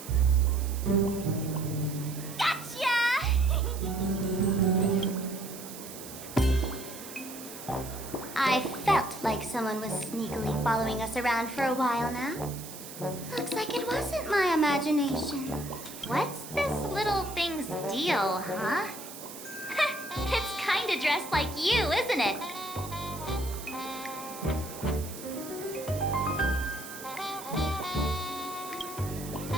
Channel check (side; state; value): right; noise; hiss, 13 dB below the sound